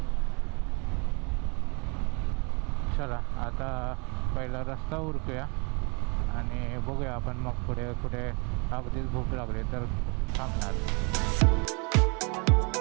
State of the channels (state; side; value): quieter; left; 32.2 dB